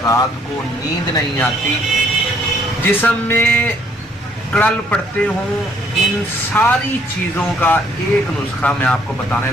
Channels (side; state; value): both; normal; correlation 0.65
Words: रात को नींद नहीं आती, जिस्म में कड़ल पड़ते हों, इन सारी चीज़ों का एक नुस्खा मैं आपको बताने